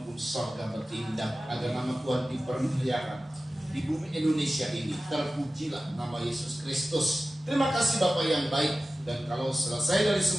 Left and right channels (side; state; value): both; normal; correlation 0.95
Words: sorga bertindak agar nama Tuhan dipermuliakan di bumi Indonesia ini. Terpujilah nama Yesus Kristus. Terima kasih Bapak yang baik. Dan kalau selesai dari